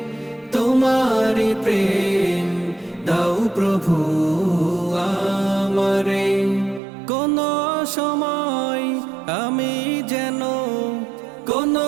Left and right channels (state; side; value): drops out; left; at 6.8 s